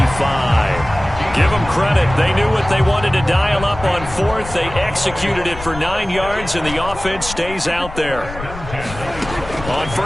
Give them credit. They knew what they wanted to dial up on 4th. They executed it for 9 yards, and the offense stays out there. On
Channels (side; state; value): left; noise; rumble, 12 dB below the sound